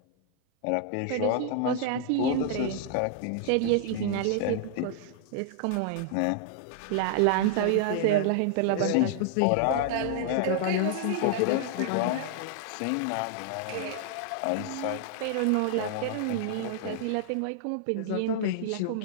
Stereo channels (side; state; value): both; different; correlation -0.01